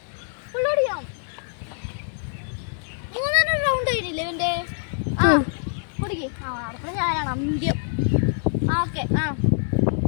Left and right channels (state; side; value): silent; right; 58 dB below the other